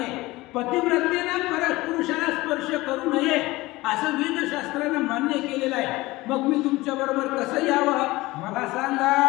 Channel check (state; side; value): quieter; right; 20.0 dB